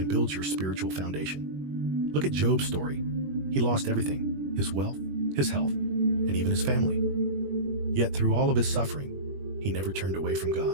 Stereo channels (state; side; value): late; left; 21 ms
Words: builds your spiritual foundation. Look at Job's story. He lost everything: his wealth, his health, and even his family. Yet through all of his suffering, he never turned away from